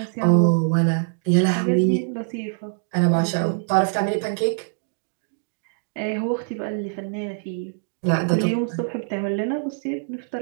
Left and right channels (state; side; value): silent; left; digital silence